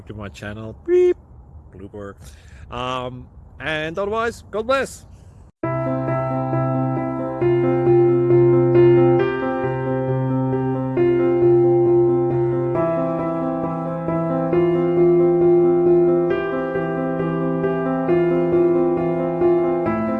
to my channel. Beep. Blooper. And otherwise, God bless.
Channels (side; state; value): both; identical; correlation 1.00